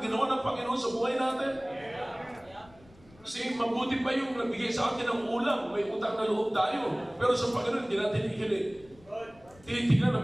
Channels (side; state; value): left; noise; rumble, 26 dB below the sound